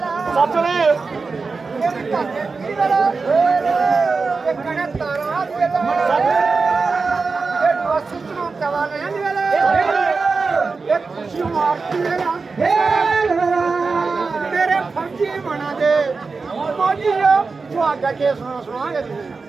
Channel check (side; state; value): left; quieter; 4.4 dB